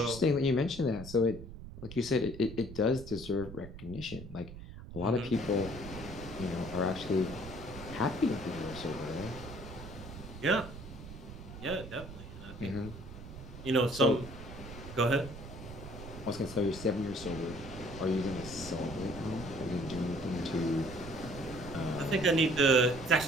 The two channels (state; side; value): noise; right; rumble, 12 dB below the sound